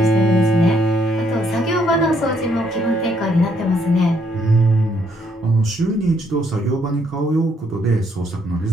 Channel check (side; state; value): both; normal; correlation 0.71